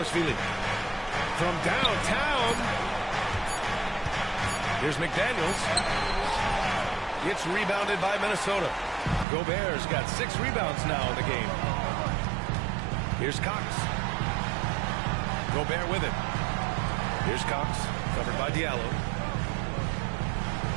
From downtown. Here's McDaniels. It's rebounded by Minnesota. Gobert's got 6 rebounds now in the game. Here's Cox. Gobert with it. Here's Cox, covered by Diallo.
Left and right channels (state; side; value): drops out; left; at 9.2 s